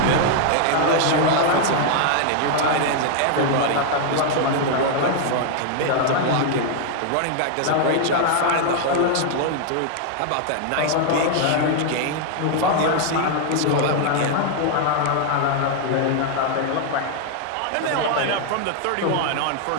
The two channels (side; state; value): both; different; correlation 0.00